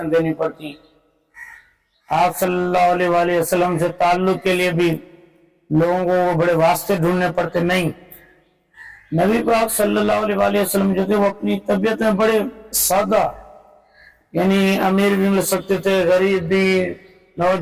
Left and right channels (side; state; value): both; identical; correlation 1.00